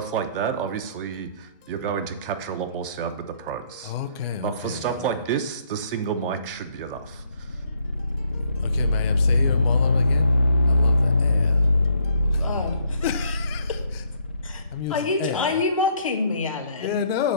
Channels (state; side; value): inverted; both; correlation -0.66